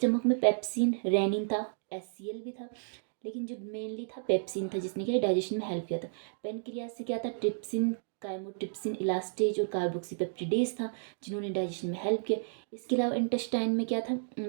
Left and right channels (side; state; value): left; silent; digital silence